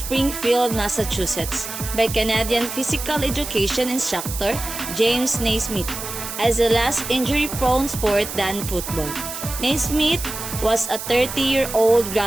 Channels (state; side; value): noise; right; hiss, 8 dB below the sound